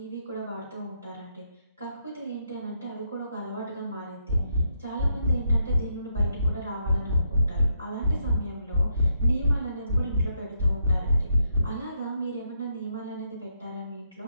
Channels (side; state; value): both; inverted; correlation -0.78